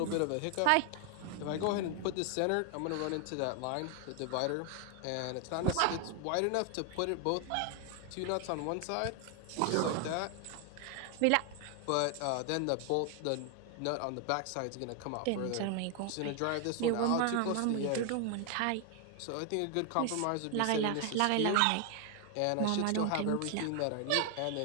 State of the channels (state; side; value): different; both; correlation 0.00